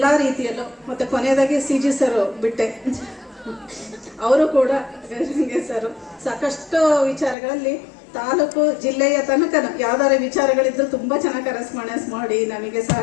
ರೀತಿಯಲ್ಲೂ, ಮತ್ತು ಕೊನೆಯದಾಗಿ CG ಸರ್ ಬಿಟ್ಟೆ, ಅವರು ಕೂಡ ಸರ್ ಸಾಕಷ್ಟು ವಿಚಾರಗಳಲ್ಲಿ ತಾಲೂಕು ಜಿಲ್ಲೆಯ ತನಕ ಯಾವ್ದಾರ ವಿಚಾರಗಳಿದ್ರು ತುಂಬ ಚೆನ್ನಾಗಿ ಕರೆಸ್ಪಾಂಡೆನ್ಸ್ ಮಾಡಿ ನಮಗೆ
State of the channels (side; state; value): right; drops out; at 7.4 s